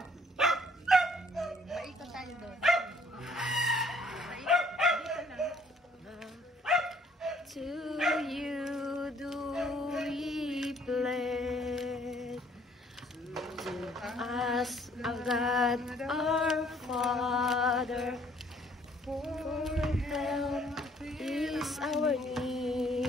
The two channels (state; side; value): normal; both; correlation 0.61